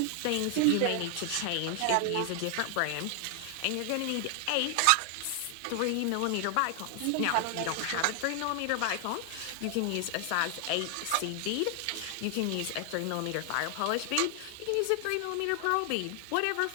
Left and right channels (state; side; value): different; both; correlation 0.00